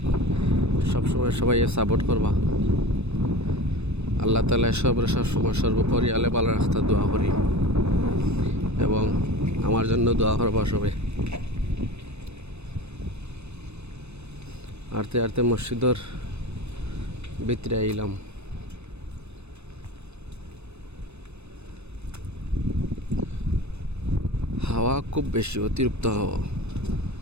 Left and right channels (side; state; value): left; late; 0.81 ms